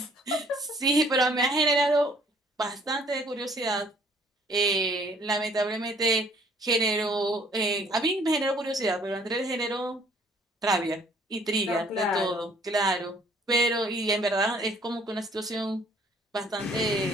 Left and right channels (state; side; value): normal; both; correlation 0.59